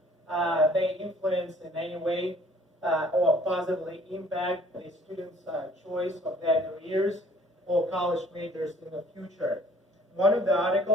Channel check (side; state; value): both; normal; correlation 0.55